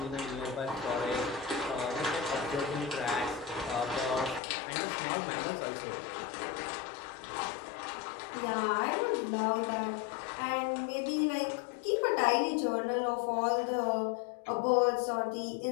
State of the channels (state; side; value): drops out; right; at 4.4 s